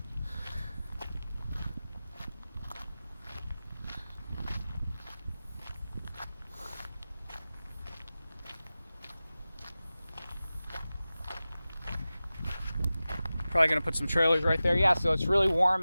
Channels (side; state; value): both; inverted; correlation -0.96